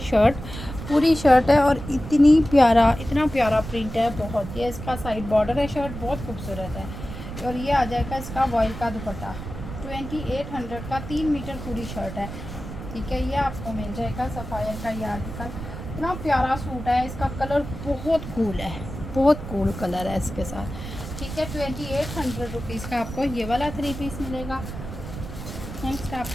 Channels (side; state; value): right; noise; rumble, 9 dB below the sound